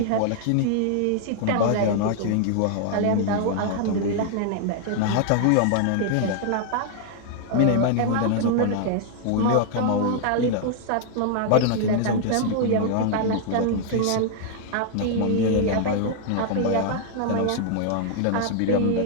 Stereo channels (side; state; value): both; different; correlation 0.00